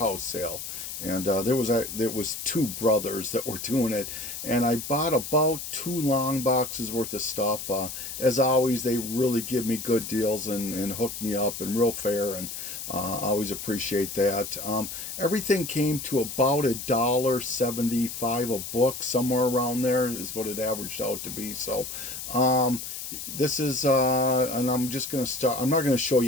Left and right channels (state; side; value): noise; left; hiss, 8 dB below the sound